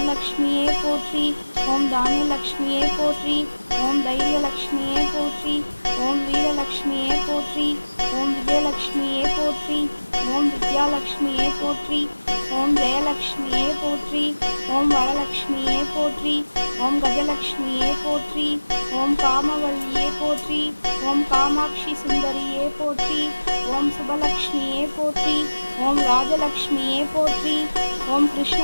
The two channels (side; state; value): both; inverted; correlation -1.00